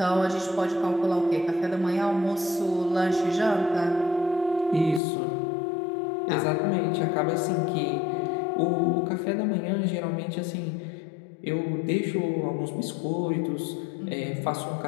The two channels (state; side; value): drops out; right; at 5.0 s